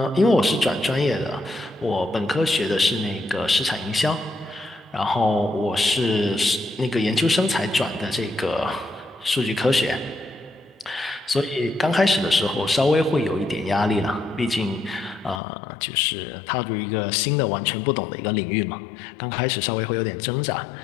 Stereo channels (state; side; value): drops out; right; at 15.4 s